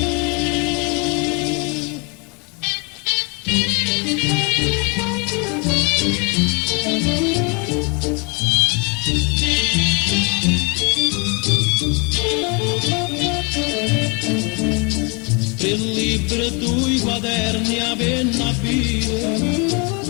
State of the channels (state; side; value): quieter; right; 32.1 dB